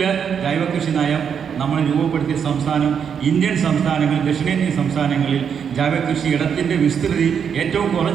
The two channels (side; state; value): left; quieter; 7.4 dB